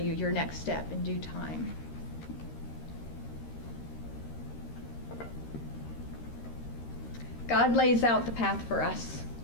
your next step in due time. God lays out the path for us,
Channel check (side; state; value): right; late; 13 ms